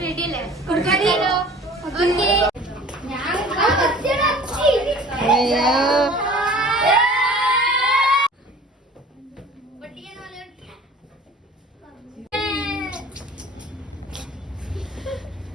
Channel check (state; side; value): normal; both; correlation 0.45